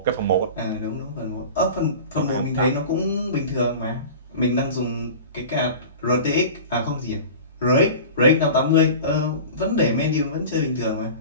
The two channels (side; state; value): both; inverted; correlation -0.36